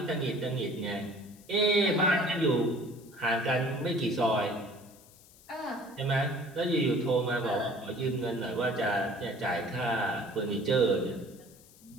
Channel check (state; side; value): noise; left; hiss, 24 dB below the sound